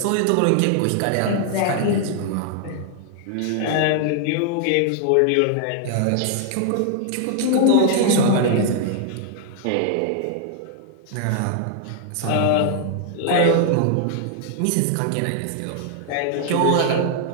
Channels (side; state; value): both; different; correlation -0.01